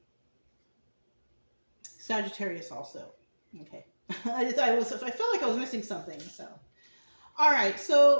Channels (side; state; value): both; inverted; correlation -1.00